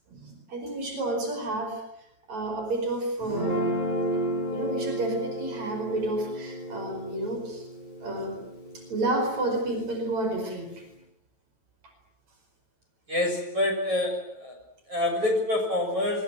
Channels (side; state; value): left; late; 9.1 ms